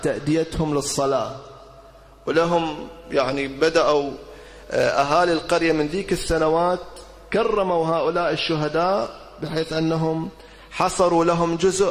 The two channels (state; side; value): identical; both; correlation 1.00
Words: تأديتهم للصلاة، ولهم يعني بدأوا أهالي القرية من ذيك السنوات كرموا هؤلاء الشهداء بحيث أنهم حصروا لهم